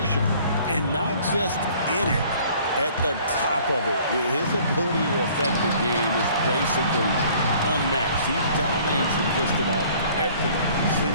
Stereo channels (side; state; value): both; inverted; correlation -0.54